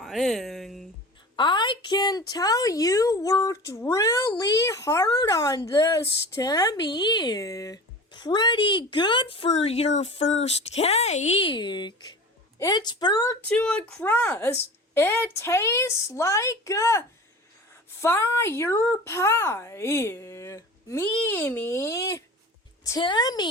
I can tell you worked really hard on this, Timmy. Pretty good for your first cake. It's burnt to a crust. It tastes like a fire pie. Mimi.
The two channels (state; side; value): normal; both; correlation 0.36